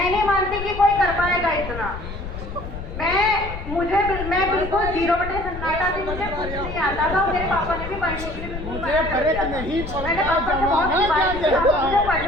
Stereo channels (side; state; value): left; noise; rumble, 8 dB below the sound